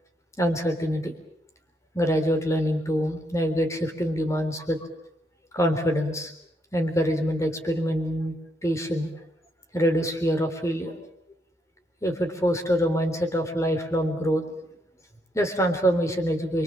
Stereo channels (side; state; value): both; normal; correlation 0.76